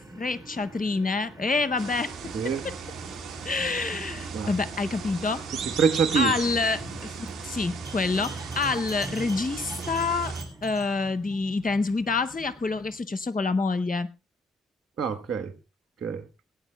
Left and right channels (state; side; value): normal; both; correlation 0.62